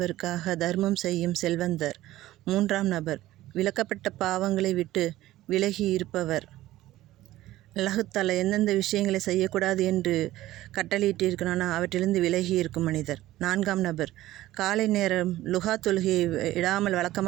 தர்மம் செய்யும் செல்வந்தர். மூன்றாம் நபர், விலக்கப்பட்ட பாவங்களை விட்டு விலகி இருப்பவர். அல்லாஹ் தஆலா எந்தெந்த விஷயங்களை செய்யக்கூடாது என்று கட்டளையிட்டிருக்கிறானோ அவற்றிலிருந்து விலகி இருக்கும் மனிதர். நான்காம் நபர், காலை நேரம் லுஹா தொழுகையை விடாமல்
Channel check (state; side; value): quieter; left; 15.6 dB